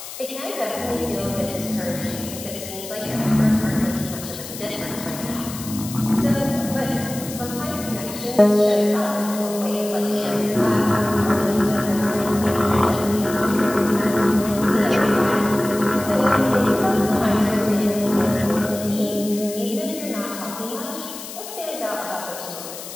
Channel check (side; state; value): left; noise; hiss, 11 dB below the sound